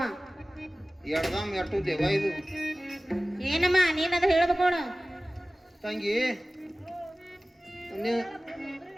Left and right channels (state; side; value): normal; both; correlation 0.97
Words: ಎಡ್ದಾಮ್ ಎಟ್ಟು ದೇವ ಇದು ಏನಮ್ಮ ನೀನದು ಹೇಳ್ಬೇಕು ನೋಡು ತಂಗಿ.